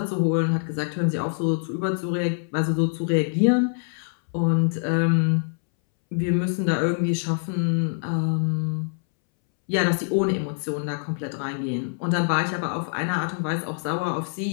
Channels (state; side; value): silent; right; 62 dB below the other